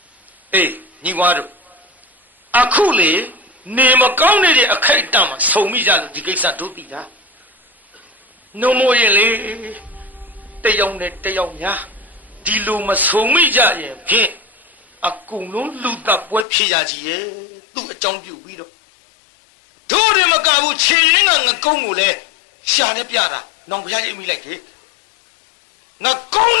အေးညီဝါတို့အခုလေနေမကောင်းနေတဲ့အခိုက်အတန့်မှာဆုံမိကြလို့ဒီကိစ္စတို့သိတာနှုံမိုးရင်လေတယောက်နဲ့တယောက်များဒီလိုမဆုံမိကြရင်ဖြင့်အကုန်လုံးလူတပ်ပွဲဖြစ်ရကြီးရဲ့သူ့အကြောင်းပြုပြီးတော့တို့တယ်မကဘူးခြေရင်းကငကုံးကိုလည်းရှာနဲ့ပြတာနောင်ဖျားရိပ်မိလိုက်တယ်ငကုံး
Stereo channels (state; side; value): drops out; right; at 16.4 s